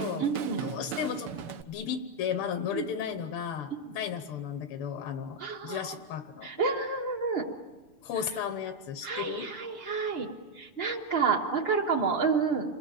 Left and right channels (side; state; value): right; late; 6.8 ms